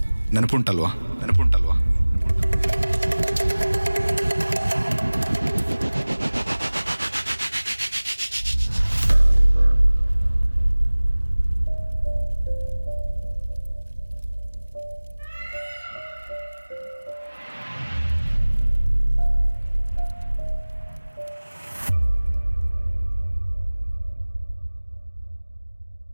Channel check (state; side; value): inverted; both; correlation -1.00